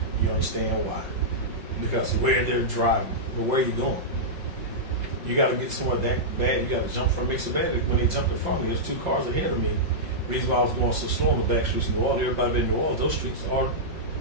you understand why. Because of where they're driving. But where are you going? You got to get somewhere that bad. You got to jump from makes it bad. When they jumped in front of me, there's 2 cars ahead of me. The reason why I was going so slow on the back streets in New Orleans, everybody in New Orleans, those streets are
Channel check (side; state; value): left; late; 5.6 ms